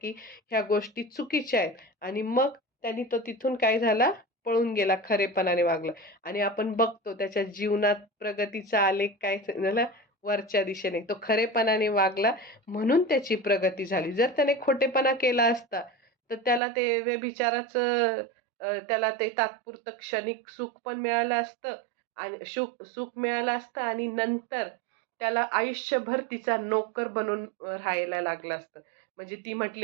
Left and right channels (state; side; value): drops out; left; at 16.6 s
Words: ह्या गोष्टी चुकीच्या आहेत. आणि मग त्यांनी तो तिथून काय झाला, पळून गेला, खरेपणाने वागला. आणि आपण बघतो त्याच्या जीवनात प्रगतीचा आलेख काय झाला, वरच्या दिशेने. तो खरेपणाने वागला म्हणून त्याची प्रगती झाली. जर त्याने खोटेपणा केला असता, तर त्याला ते व्यभिचाराचं त्याला ते तात्पुरतं क्षणिक सुख पण मिळालं असतं आणि सुख मिळालं असतं आणि नंतर त्याला आयुष्यभर तिचा नोकर बनून राहायला लागलं असतं. म्हणजे ती